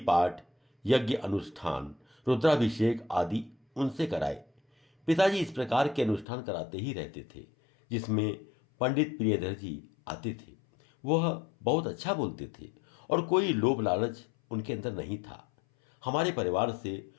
पाठ, यज्ञ अनुष्ठान, रुद्राभिषेक आदि उनसे कराए। पिताजी इस प्रकार के अनुष्ठान कराते ही रहते थे जिसमें पंडित प्रियधर जी आते थे। वह बहुत अच्छा बोलते थे और कोई लोभ लालच उनके अंदर नहीं था। हमारे परिवार से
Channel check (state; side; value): drops out; right; at 6.2 s